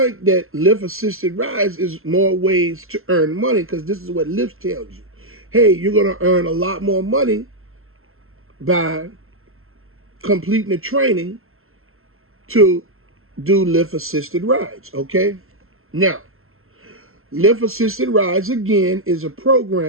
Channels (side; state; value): left; late; 0.62 ms